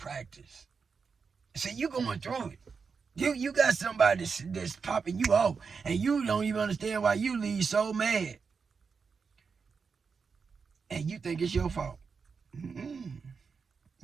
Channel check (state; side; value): quieter; left; 5.4 dB